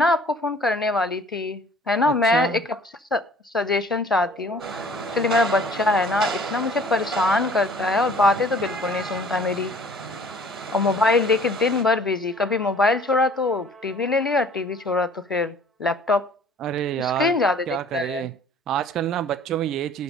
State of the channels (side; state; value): both; normal; correlation 0.52